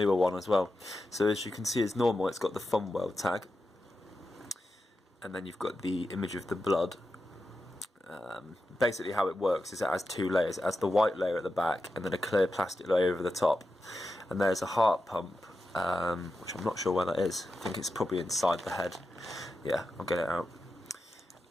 one as well. So as you can see, as normal, it's got the Fun World tag, and then you've got the image of the blood. Basically how it works is it has 2 layers. It has the white layer at the back and then a clear plastic layer over the top. And there's a heart pump, which I'm not sure where that is. I think it's probably inside the head. Yeah, I'll get it out.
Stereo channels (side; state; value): both; normal; correlation 0.90